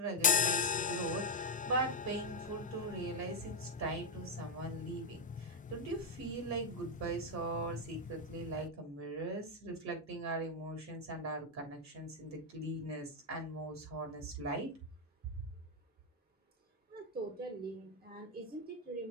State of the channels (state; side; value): normal; both; correlation 0.03